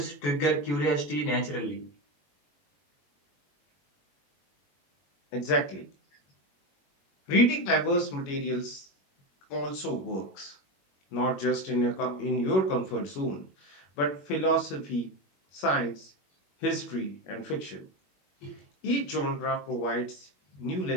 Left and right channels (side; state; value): right; late; 21 ms